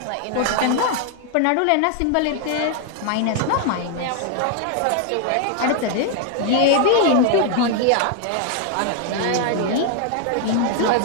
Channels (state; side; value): different; both; correlation 0.00